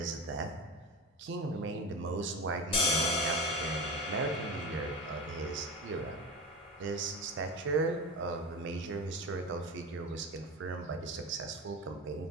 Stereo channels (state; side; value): normal; both; correlation 0.25